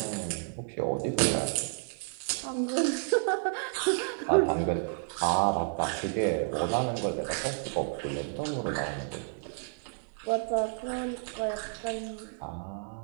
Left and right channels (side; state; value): left; silent; digital silence